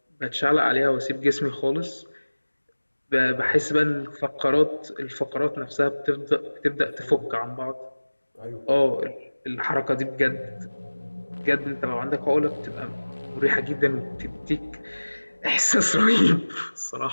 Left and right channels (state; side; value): inverted; both; correlation -1.00